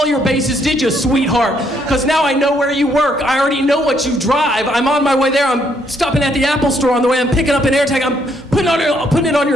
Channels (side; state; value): both; normal; correlation 0.71